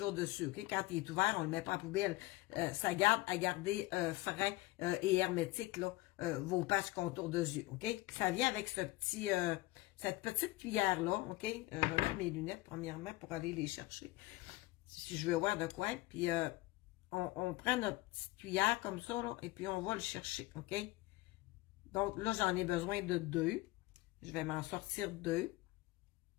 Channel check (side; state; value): right; quieter; 19.7 dB